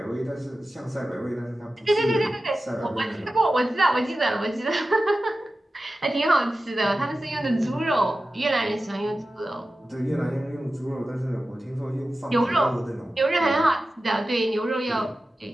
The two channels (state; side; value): normal; both; correlation 0.94